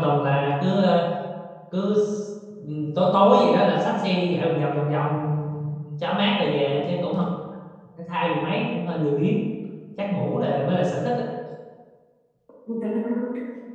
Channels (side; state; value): both; identical; correlation 1.00